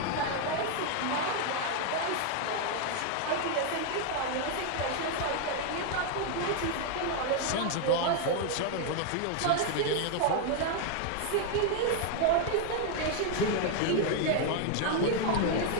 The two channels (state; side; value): different; both; correlation 0.00